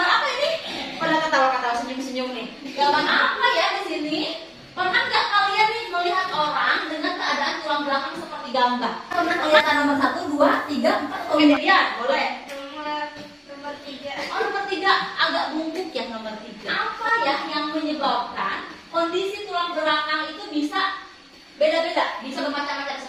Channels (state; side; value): identical; both; correlation 1.00